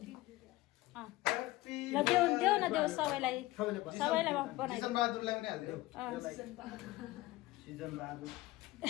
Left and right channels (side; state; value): right; quieter; 18.7 dB